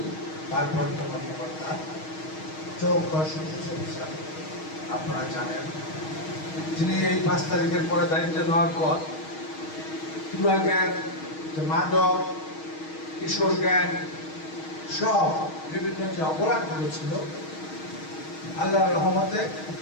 ভারপ্রাপ্ত কর্মকর্তা চৌকা অফিসার আপনারা জানেন, যিনি এই 5 তারিখের পরে দায়িত্ব নেওয়ার পর পুরা গ্যাং, মাদক, কিশোর গ্যাং সব বিভিন্ন যে অপরাধগুলো ছিল, আল্লাহর রহমতে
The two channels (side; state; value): right; late; 6.4 ms